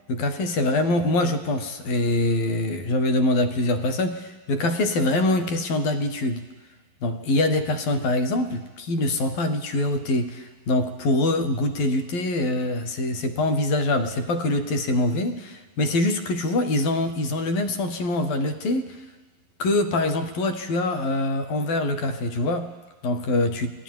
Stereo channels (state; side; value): late; right; 11 ms